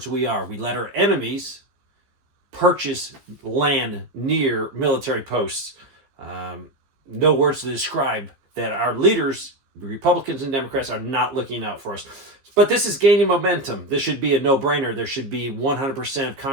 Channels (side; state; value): left; late; 15 ms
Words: we are. We let our enemies purchase land near military posts. No words to describe that our leaders, Republicans and Democrats, are not looking out for us. But this is gaining momentum. This should be a no-brainer. There should be 100% of